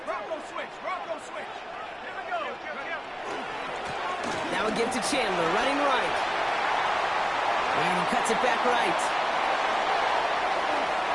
Bronco switch. Bronco switch. Here we go. Now a give to Chandler, running right. And he cuts it back right.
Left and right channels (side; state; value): both; identical; correlation 1.00